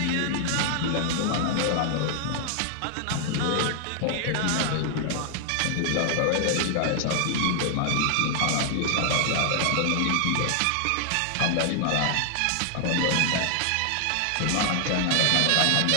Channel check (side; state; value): both; different; correlation 0.00